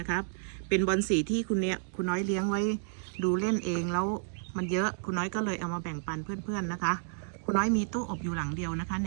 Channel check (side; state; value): left; silent; digital silence